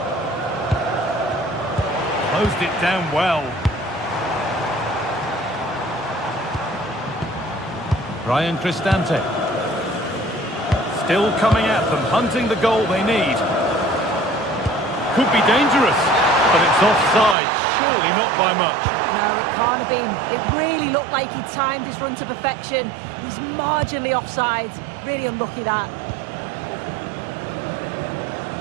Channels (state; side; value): drops out; left; at 17.4 s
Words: Closed it down well. Brian Cristante. Still coming at them, hunting the goal they need. Could be dangerous, but it's offside. Surely not by much. No, it can't have been. It really looked like he timed his run to perfection. He's marginally offside. Really unlucky, that.